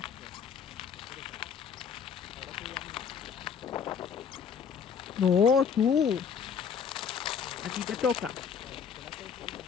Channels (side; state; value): right; quieter; 6.9 dB